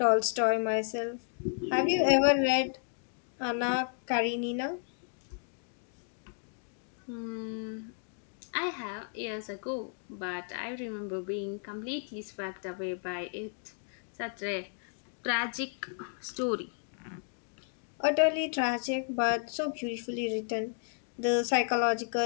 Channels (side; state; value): right; silent; 56 dB below the other